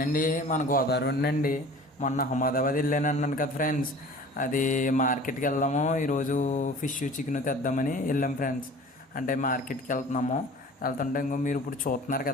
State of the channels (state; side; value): normal; both; correlation 0.44